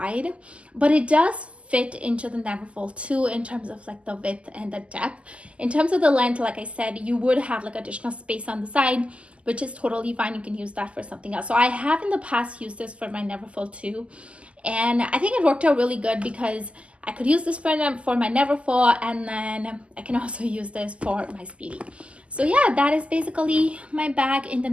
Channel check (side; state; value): left; late; 0.058 ms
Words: but it does fit into the Neverfull too in terms of like the width and the depth. In terms of the length, like I said, you would have like additional space on the side, which is totally fine. You can use that for something else. So I have in the past used this for my Neverfull too, and I think it worked out really good because I could use this for my Neverfull, and then I can also use this for my Speedy. So yeah, that is basically my bag in the